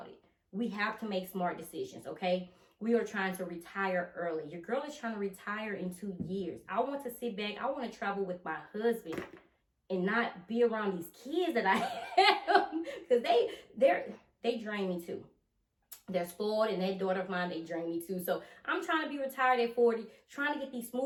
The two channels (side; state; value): both; identical; correlation 1.00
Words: it. We have to make smart decisions, okay? We are trying to retire early. Your girl is trying to retire in 2 years. I want to sit back. I want to travel with my husband and not be around these kids that I have, because they drain me too. They're spoiled, and that daughter of mine, they drain me too. So I'm trying to be retired at 40, trying to get these